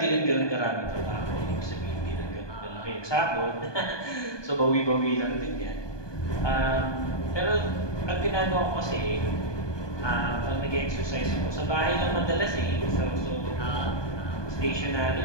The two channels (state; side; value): late; right; 1.2 ms